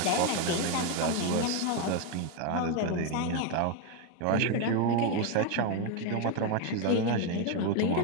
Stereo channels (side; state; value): both; different; correlation 0.02